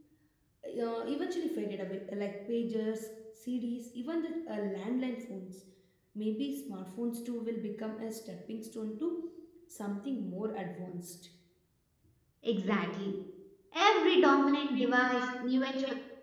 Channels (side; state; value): both; identical; correlation 1.00